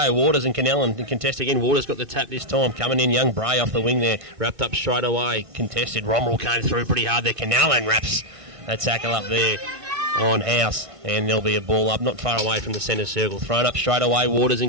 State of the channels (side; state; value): left; late; 1.5 ms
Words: Waters and Canellan can contest again. Waters got the tap this time. Coming in, young Bray off the wing there. Wrapped up straight away. Contested. Romrell came through pretty hard there. Canellan wraps a tackle up there on House, and there'll be a ball up not far away from the centre circle. Thrown up straight away. Waters